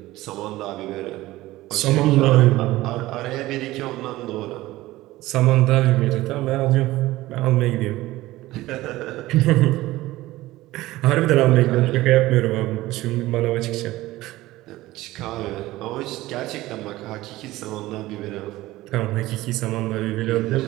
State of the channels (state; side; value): quieter; left; 17.4 dB